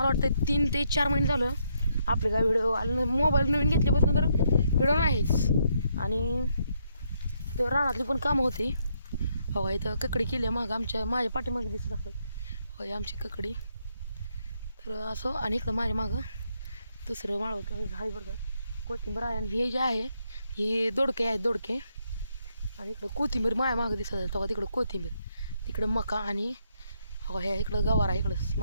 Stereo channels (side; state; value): both; inverted; correlation -0.75